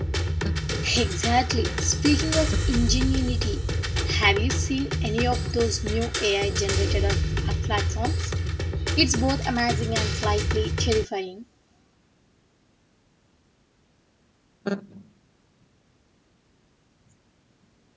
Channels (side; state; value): both; identical; correlation 1.00